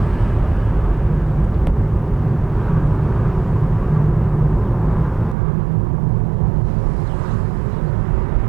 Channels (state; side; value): drops out; left; at 5.4 s